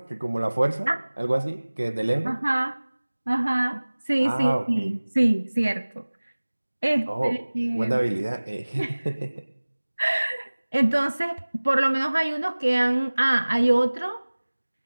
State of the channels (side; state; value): both; inverted; correlation -1.00